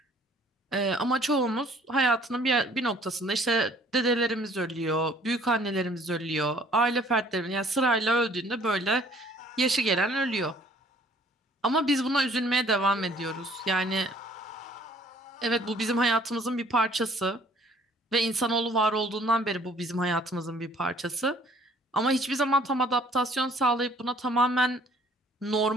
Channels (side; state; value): both; normal; correlation 0.57